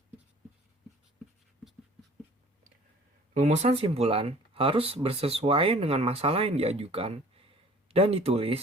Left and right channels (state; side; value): normal; both; correlation 0.50